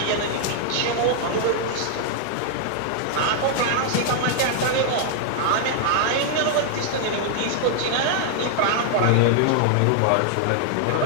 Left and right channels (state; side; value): different; both; correlation -0.01